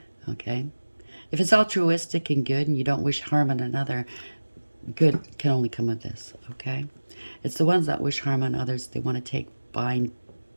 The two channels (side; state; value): both; inverted; correlation -1.00